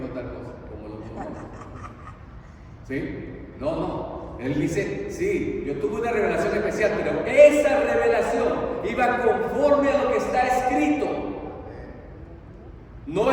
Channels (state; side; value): identical; both; correlation 1.00